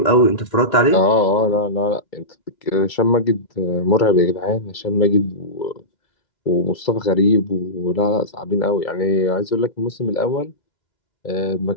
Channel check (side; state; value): right; late; 2.0 ms